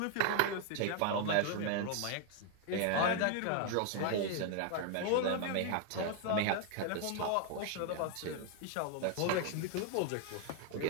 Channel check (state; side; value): different; both; correlation 0.00